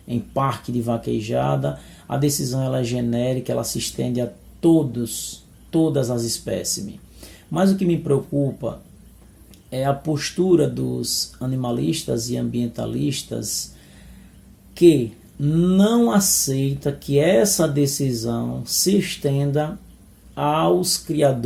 em parque de vaquejada. A decisão ela é genérica, ela se estende a todas as espécimes. Mas o que me preocupa é a postura dos animalistas e ambientalistas que não aceita que essa decisão se estenda aos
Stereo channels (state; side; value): identical; both; correlation 1.00